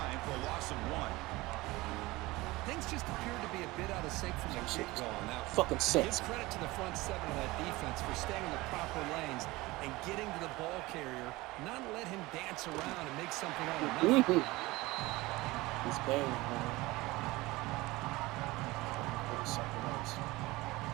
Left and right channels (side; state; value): left; quieter; 20.6 dB